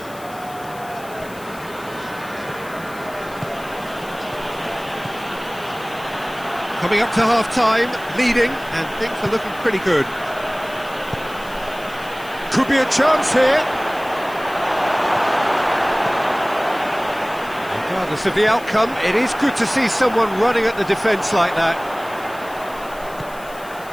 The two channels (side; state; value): left; noise; hiss, 20 dB below the sound